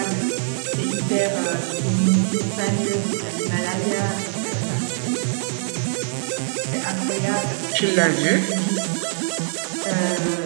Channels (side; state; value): left; silent; digital silence